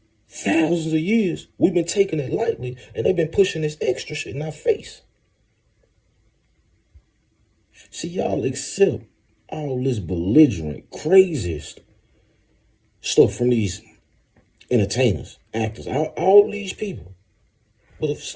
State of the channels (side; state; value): both; identical; correlation 1.00